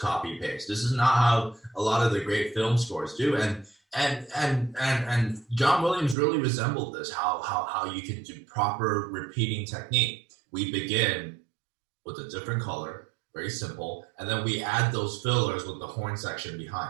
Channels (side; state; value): left; drops out; at 6.2 s